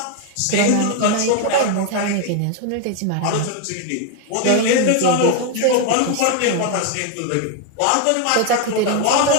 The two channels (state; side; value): different; both; correlation 0.01